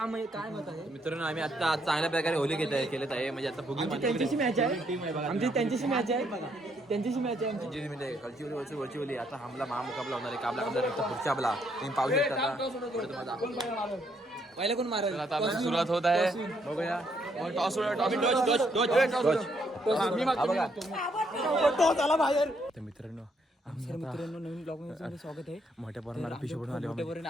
आहे काय मत आहे मित्रांनो आम्ही आता चांगल्या प्रकारे होली केलेत आहे म्हणजे आता फुगी त्यांच्याशी मॅच आहे आमची त्यांच्याशी मॅच आहे त्यांच्याशी मॅच आहे आमची म्हणजे खालची वरची ओली आता हमला महामुकाबला होणार आहे. काबला पुढच्या आपला तुम्ही पाहू शकता पहिला कोण मारेल आता आपली सुरुवात होत आहे. बघूया टॉस मित्रांनो मित्रांनो नवीन ब्लॉग मध्ये स्वागत आहे. मोठ्या पोरांना पिशवी बनवून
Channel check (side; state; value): both; normal; correlation 0.72